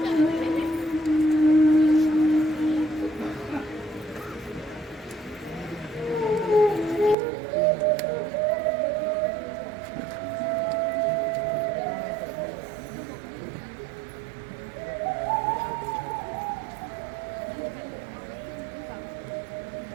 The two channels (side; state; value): left; drops out; at 7.2 s